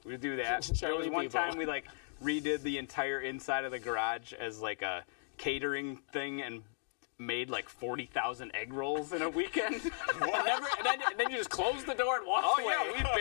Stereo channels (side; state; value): right; silent; digital silence